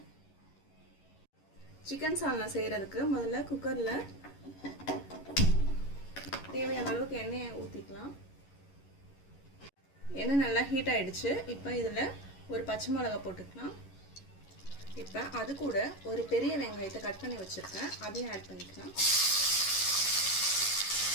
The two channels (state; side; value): late; right; 11 ms